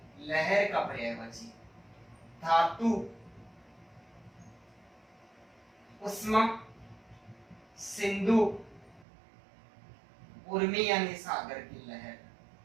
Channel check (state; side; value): drops out; left; at 9.1 s